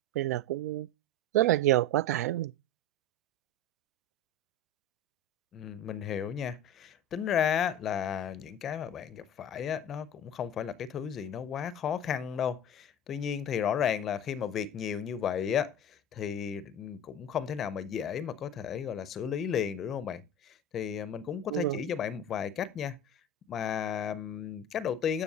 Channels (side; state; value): both; normal; correlation 0.31